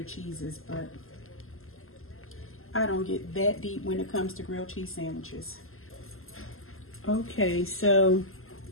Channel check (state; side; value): late; right; 0.61 ms